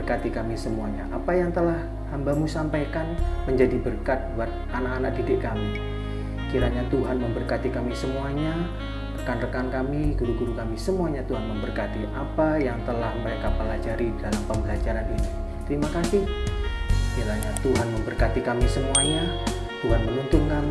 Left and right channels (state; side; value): identical; both; correlation 1.00